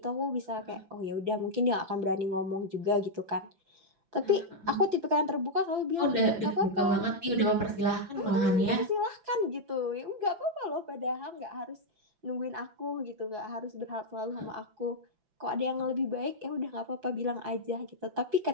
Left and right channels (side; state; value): left; late; 5.9 ms